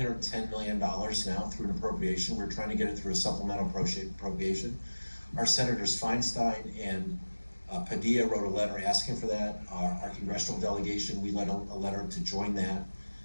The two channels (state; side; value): inverted; both; correlation -1.00